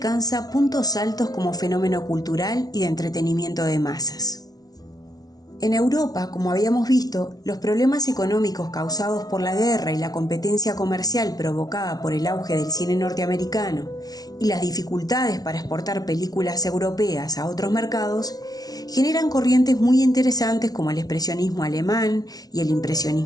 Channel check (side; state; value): right; late; 0.18 ms